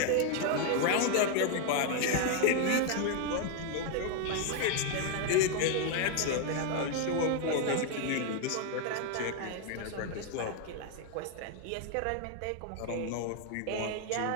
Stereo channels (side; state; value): both; different; correlation 0.00